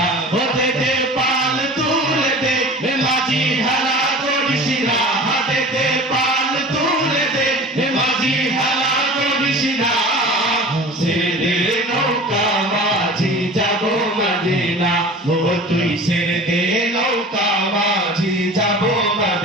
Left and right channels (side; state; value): both; normal; correlation 0.39